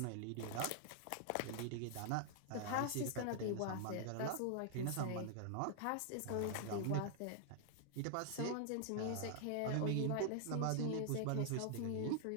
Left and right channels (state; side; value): different; both; correlation 0.00